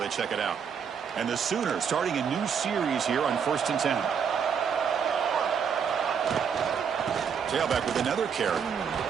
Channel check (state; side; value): quieter; left; 7.0 dB